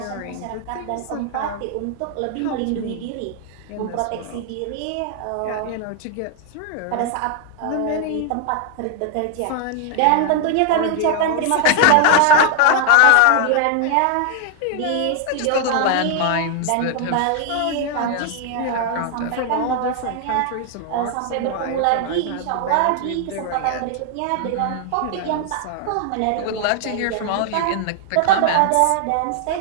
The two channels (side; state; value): both; different; correlation 0.00